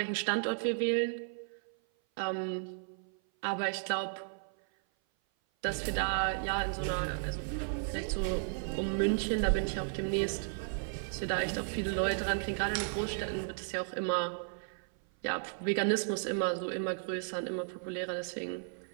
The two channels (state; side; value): silent; left; 55 dB below the other